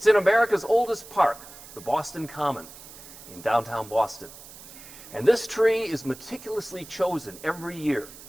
in America's oldest park, the Boston Common, in downtown Boston. And this tree is meticulously chosen every year.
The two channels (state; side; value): noise; right; hiss, 17 dB below the sound